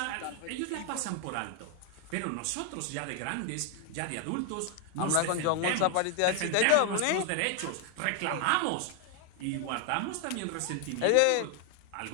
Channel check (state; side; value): different; both; correlation 0.01